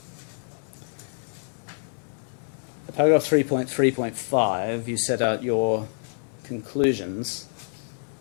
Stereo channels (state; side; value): silent; right; 60 dB below the other